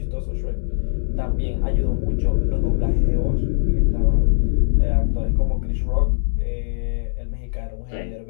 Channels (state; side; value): silent; right; 65 dB below the other